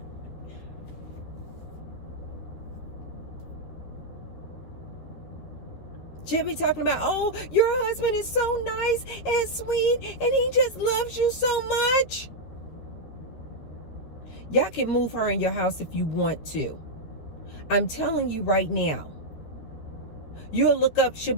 She'll be talking about, oh, your husband is so nice and sweet and he just loves you so much. Y'all can move her in your house if you want to. I'm telling you right now. You'll look up, she'll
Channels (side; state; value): right; late; 13 ms